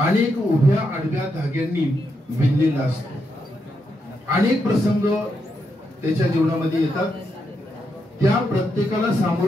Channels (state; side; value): normal; both; correlation 0.82